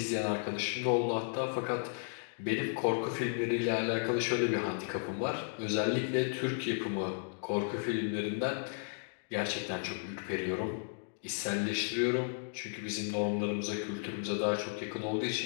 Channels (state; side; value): silent; right; digital silence